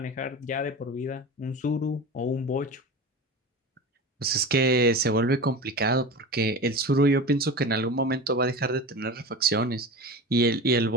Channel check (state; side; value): normal; both; correlation 0.31